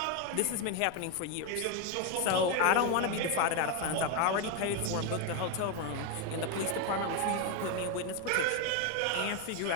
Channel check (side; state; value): both; different; correlation 0.02